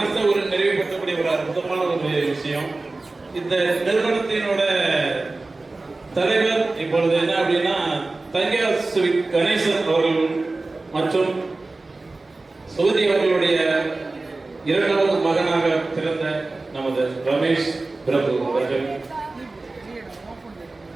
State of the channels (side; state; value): left; quieter; 3.3 dB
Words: ஒரு நிறைவுபடுத்தக்கூடிய ஒரு அற்புதமான ஒரு விஷயம். இந்த நிறுவனத்தினோட தலைவர் இப்பொழுது என்ன அப்படின்னா தங்கியா ஸ்வீட் கணேசன் அவர்கள் மற்றும் சுகதி அவர்களுடைய இரண்டாவது மகனாக பிறந்த நமது ரமேஷ் பிரபு அவர்கள்.